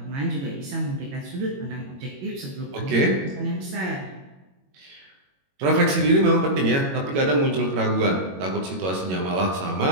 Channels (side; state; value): left; late; 22 ms